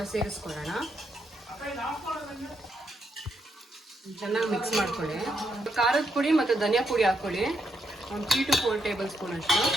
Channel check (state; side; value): normal; both; correlation 0.79